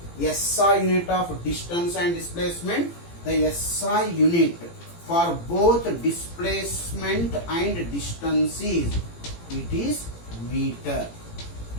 SI unit of distance and displacement? The SI unit for both displacement and distance is, it is meter.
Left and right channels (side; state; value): right; late; 18 ms